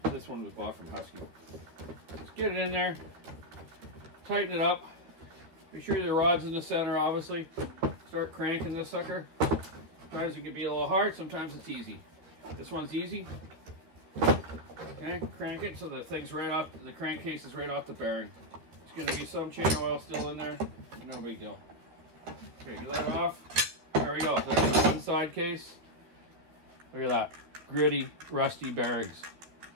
this one was bought from Husky. Just get it in there. Tighten it up. Make sure the rod's in the center, obviously. Start cranking this sucker. Sometimes it can be a little hard, sometimes it's easy. This one's easy. Okay, crank it so the thing's right off, the crankcase is right off the bearing. There's going to be some chain oil still in there. No big deal. Okay, get that off. There we go. There's the one side case. Look at that. Gritty, rusty bearings.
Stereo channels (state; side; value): late; left; 13 ms